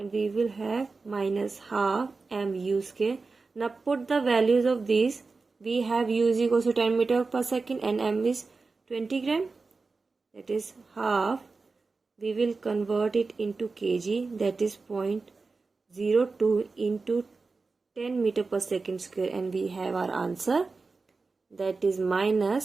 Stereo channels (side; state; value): left; quieter; 4.1 dB